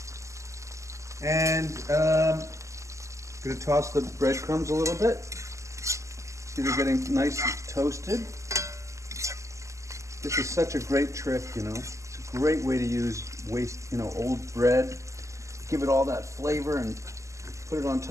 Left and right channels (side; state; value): left; late; 0.15 ms